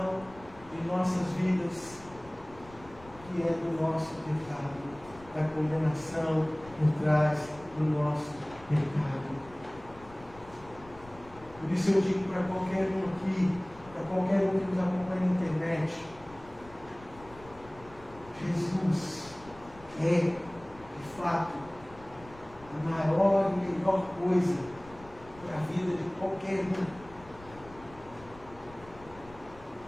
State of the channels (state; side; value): noise; left; rumble, 21 dB below the sound